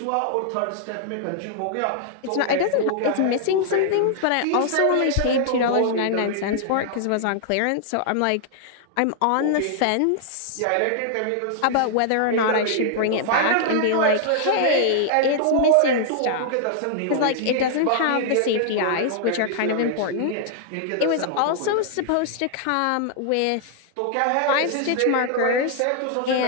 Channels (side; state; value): both; different; correlation -0.01